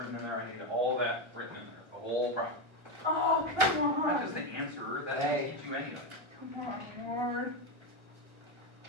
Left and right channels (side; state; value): left; late; 1.4 ms